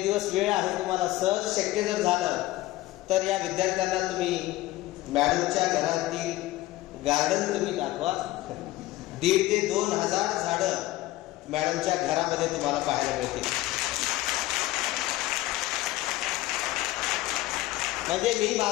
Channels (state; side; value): quieter; right; 17.3 dB